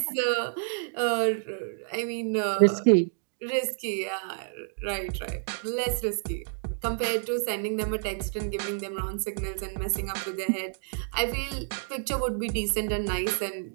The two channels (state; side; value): silent; left; digital silence